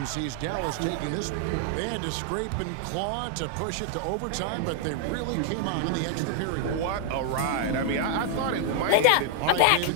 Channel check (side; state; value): both; different; correlation 0.00